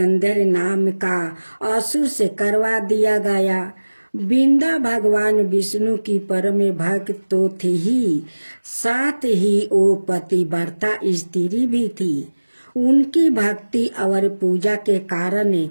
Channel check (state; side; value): inverted; both; correlation -1.00